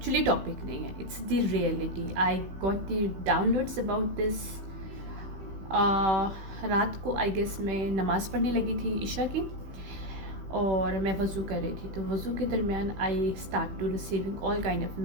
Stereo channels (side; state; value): left; late; 16 ms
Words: टॉपिक नहीं है, it's the reality. I got the downloads about this. रात को आई गेस मैं नमाज़ पढ़ने लगी थी ईशा की, और मैं वज़ू कर रही थी। तो वज़ू के दरमियान I start to receiving all kind of